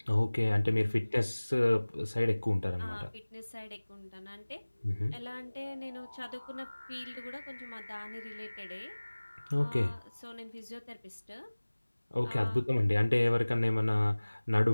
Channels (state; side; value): inverted; both; correlation -1.00